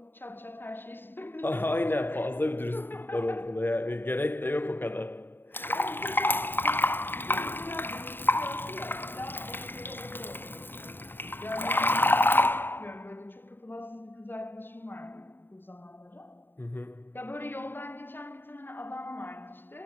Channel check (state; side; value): late; right; 0.097 ms